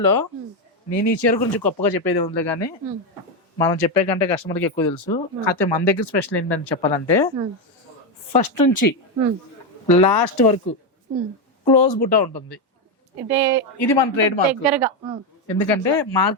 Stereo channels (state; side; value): normal; both; correlation 0.08